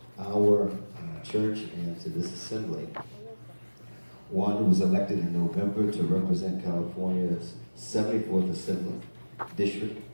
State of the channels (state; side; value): inverted; both; correlation -1.00